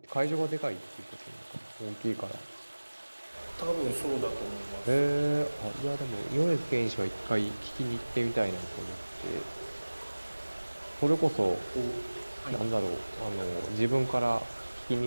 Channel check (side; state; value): both; inverted; correlation -1.00